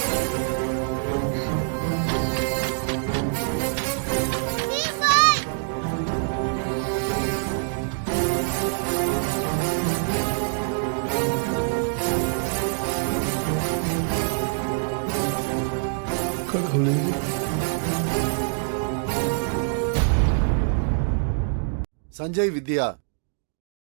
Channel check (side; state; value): left; silent; digital silence